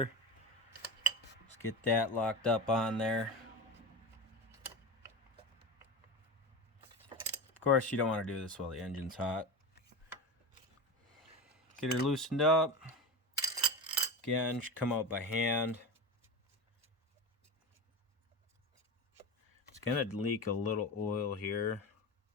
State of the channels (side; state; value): both; normal; correlation 0.24